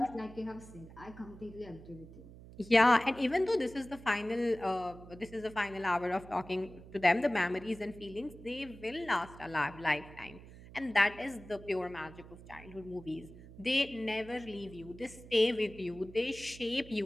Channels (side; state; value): right; noise; hum, 17 dB below the sound